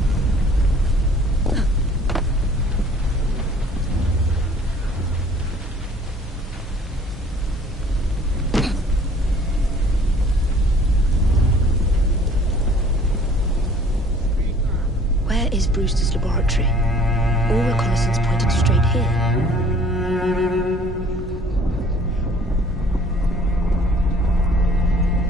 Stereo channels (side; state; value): both; normal; correlation 0.53